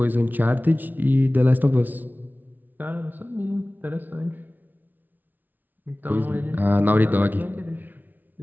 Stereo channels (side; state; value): left; late; 0.084 ms